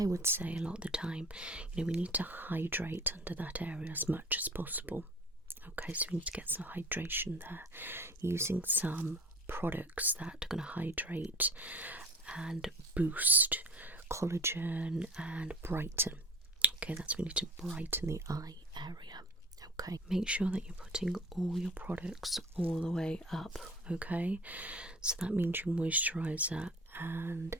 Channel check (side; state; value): both; normal; correlation 0.42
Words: would say a lot of the time, we need to hydrate under that area as much as possible. Okay, so we need to get some hydration there, using some products that are going to hydrate and boost collagen and brighten. Okay, that's we need to brighten the eye area. Okay, make sure that you're putting all your products all the way up. Okay, so that means your moisturizer and